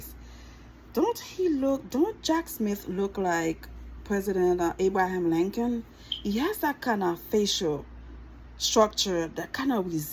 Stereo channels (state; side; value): identical; both; correlation 1.00